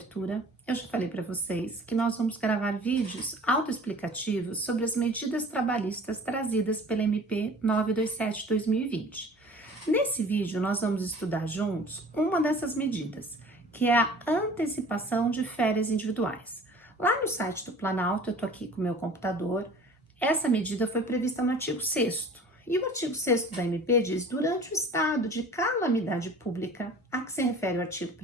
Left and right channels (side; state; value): both; normal; correlation 0.46